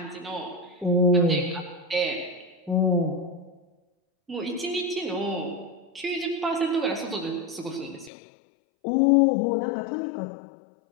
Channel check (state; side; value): drops out; right; at 8.1 s